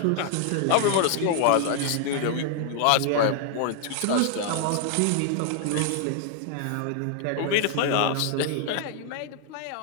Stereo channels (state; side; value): different; both; correlation 0.00